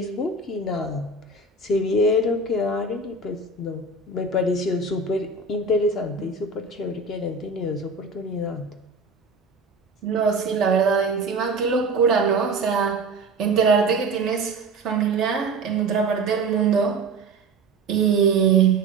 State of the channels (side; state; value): left; quieter; 3.5 dB